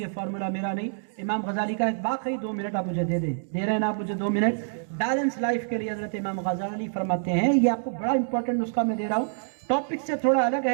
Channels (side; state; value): left; silent; digital silence